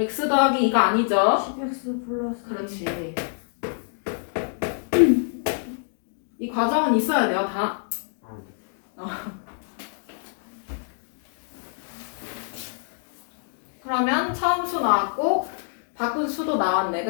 더하기 2가 아니죠? 10X 플러스. 그렇지. 이 과정은 있어야 돼요, 다. 그러면 처음 수 나왔고 바꾼 수도 나왔네,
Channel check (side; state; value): right; silent; digital silence